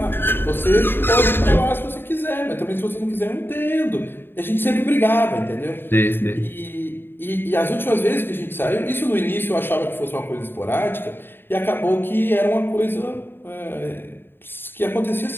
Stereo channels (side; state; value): right; late; 0.10 ms